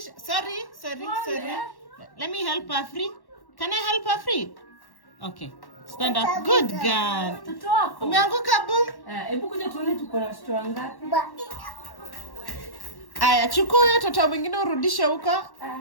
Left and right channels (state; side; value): late; right; 1.1 ms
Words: Sorry. Let me help her free. Can I help her free? Okay. Stand up. Good girl. Toto wako. Umeanguka boom. Hebu kuja tuone tuko na watoto wangapi. Aya, chukua huyo toto mwingine urudishe huko.